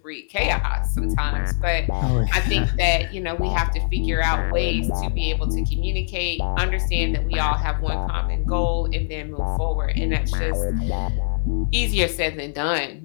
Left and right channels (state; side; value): silent; right; digital silence